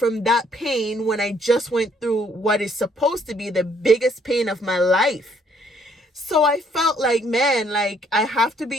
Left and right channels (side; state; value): both; normal; correlation 0.66